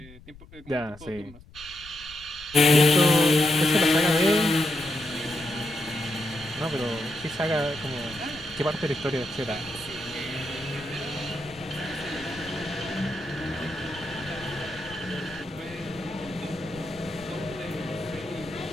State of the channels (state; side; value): noise; left; rumble, 20 dB below the sound